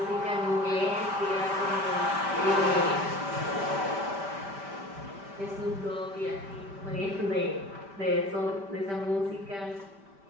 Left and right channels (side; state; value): left; late; 5.1 ms